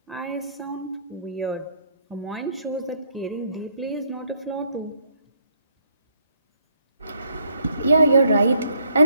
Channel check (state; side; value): inverted; both; correlation -0.68